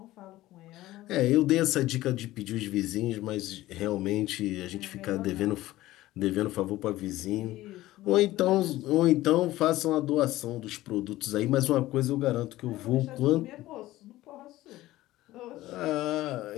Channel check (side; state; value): right; quieter; 16.4 dB